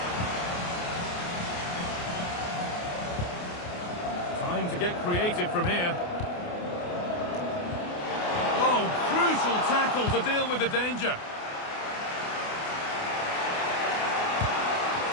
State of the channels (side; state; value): right; late; 28 ms